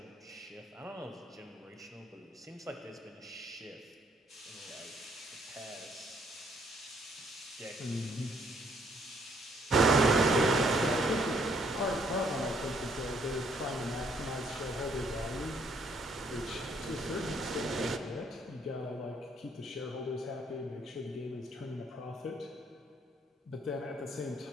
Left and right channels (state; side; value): normal; both; correlation 0.67